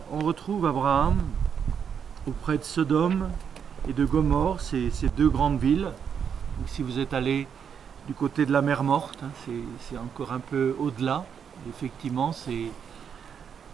on retrouve Abraham auprès de Sodome et de Gomorrhe, ces deux grandes villes. Donc, si vous êtes allé du côté de la mer Morte, c'est encore un peu au-delà. Effectivement, c'est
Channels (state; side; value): quieter; left; 7.4 dB